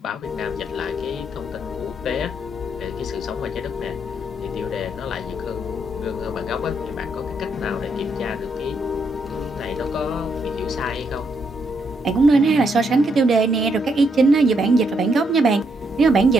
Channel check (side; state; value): both; normal; correlation 0.76